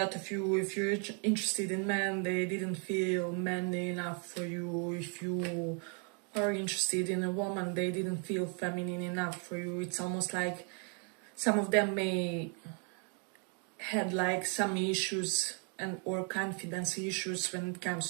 of you, if you're interested in men, they didn't feel manly enough for you. If you are interested in a woman, they didn't feel feminine enough for you. It's almost like some of them may had like some issues and or confidence issues when it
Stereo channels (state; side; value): quieter; left; 38.9 dB